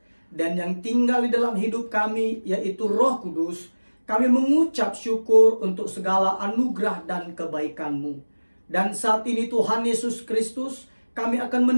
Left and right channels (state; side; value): inverted; both; correlation -1.00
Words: dan yang tinggal di dalam hidup kami yaitu Roh Kudus, kami mengucap syukur untuk segala anugerah dan kebaikan-Mu. Dan saat ini Tuhan Yesus Kristus, kami akan